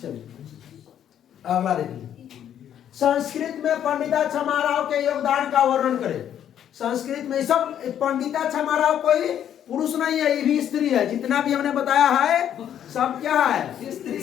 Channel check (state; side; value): quieter; right; 10.0 dB